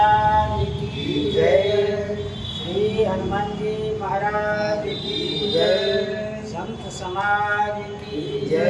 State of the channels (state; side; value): identical; both; correlation 1.00